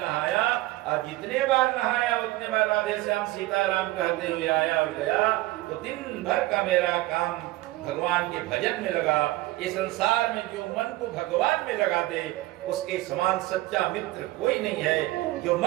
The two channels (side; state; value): left; quieter; 18.3 dB